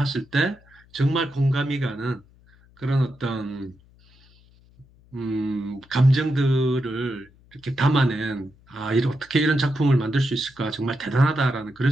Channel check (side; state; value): left; noise; hum, 28 dB below the sound